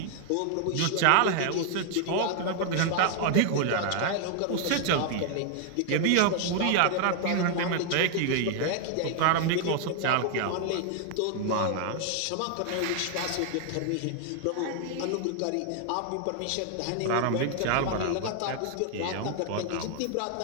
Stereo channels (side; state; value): both; different; correlation 0.00